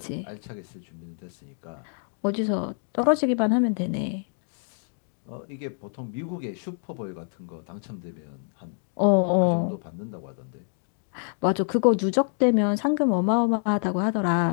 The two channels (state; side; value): silent; right; digital silence